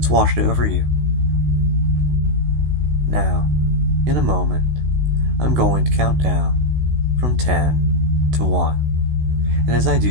washed over you. Now, in a moment, I'm going to count down from 10 to 1, and as I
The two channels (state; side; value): late; left; 16 ms